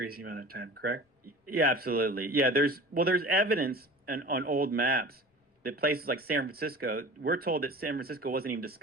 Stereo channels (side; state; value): both; normal; correlation 0.39